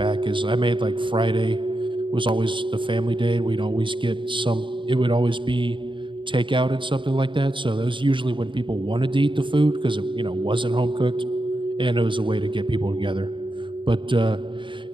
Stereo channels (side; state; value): left; late; 0.24 ms